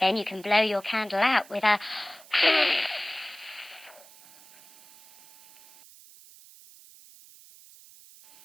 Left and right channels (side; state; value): right; noise; hiss, 23 dB below the sound